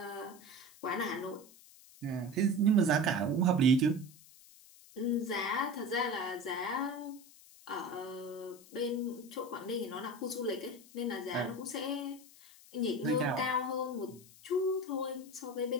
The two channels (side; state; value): left; noise; hiss, 22 dB below the sound